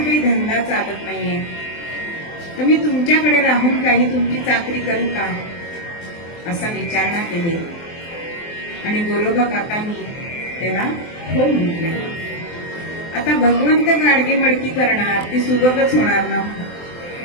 धंदा चालत नाहीये, तर मी तुमच्याकडे राहून काही तुमची चाकरी करू का, असा विचारणा केली. आणि गोरोबा काकांनी त्याला हो म्हटले. आता भगवंत गाडगे मडकी करणार, ती सुबकच होणार ना.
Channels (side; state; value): right; late; 23 ms